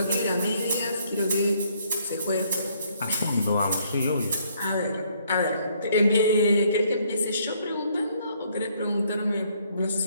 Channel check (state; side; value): inverted; both; correlation -0.67